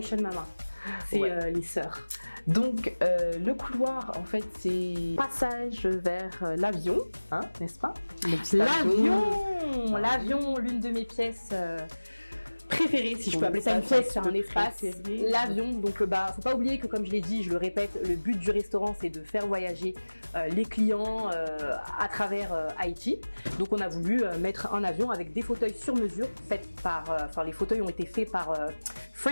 Mama. C'est les sœurs. Donc le couloir en fait c'est passage vers l'avion, hein, n'est-ce pas? L'avion, l'une de mes pièces préférée, si je peux appeler ça une pièce, c'est un espace. L'avion, donc faut pas oublier que comme je l'ai dit, je le répète, le but du restaurant c'est de faire voyager les clients à travers Haïti. Donc on a voulu mettre un avion avec des fauteuils sur mesure, les fauteuils ont été faits par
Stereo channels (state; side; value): inverted; both; correlation -1.00